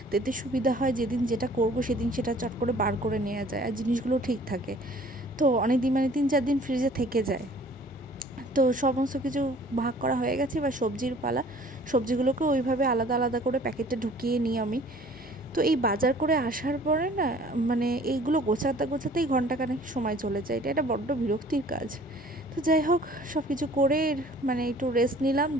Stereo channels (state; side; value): normal; both; correlation 0.52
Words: এতে সুবিধা হয়, যেদিন যেটা করব সেদিন সেটা চট করে বার করে নেওয়া যায়, আর জিনিসগুলো ঠিক থাকে। তো অনেক দিন, মানে 3-4 দিন ফ্রিজে থেকে যায়। তো সমস্ত কিছু ভাগ করা হয়ে গেছে, এবার সবজির পালা। সবজিগুলোকে ওইভাবে আলাদা আলাদা করে প্যাকেটে ঢুকিয়ে নিই আমি। তো এই বাজার করে আসার পরে না, মানে এইগুলো গোছাতে গোছাতেই ঘন্টাখানেক সময় চলে যায়। এটা বড্ড বিরক্তির কাজ। তো যাই হোক, সব কিছু করে মানে একটু রেস্ট নিলাম,